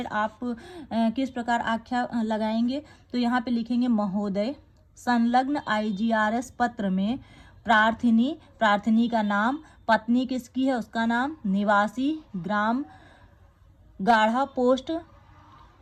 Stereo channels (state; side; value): identical; both; correlation 1.00